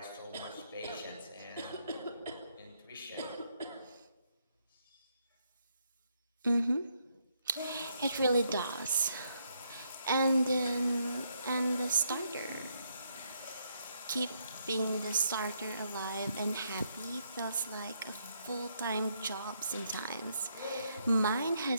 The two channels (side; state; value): both; inverted; correlation -0.75